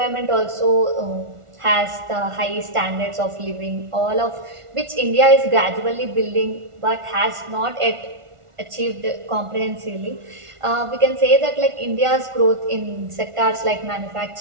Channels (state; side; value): late; left; 1.4 ms